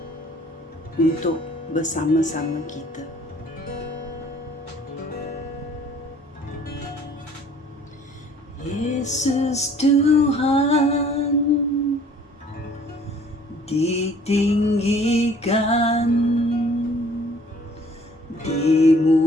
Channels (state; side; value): normal; both; correlation 0.55